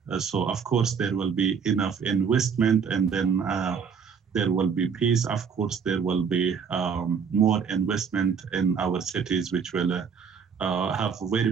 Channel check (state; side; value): quieter; left; 6.4 dB